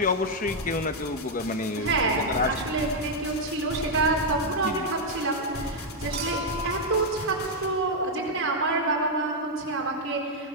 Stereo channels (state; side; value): normal; both; correlation -0.01